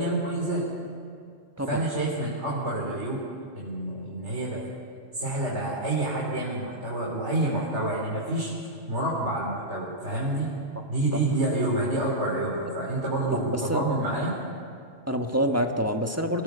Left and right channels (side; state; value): both; normal; correlation -0.11